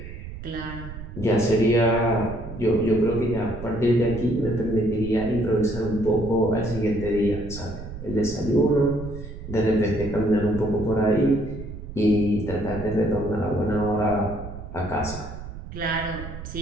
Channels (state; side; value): noise; right; rumble, 11 dB below the sound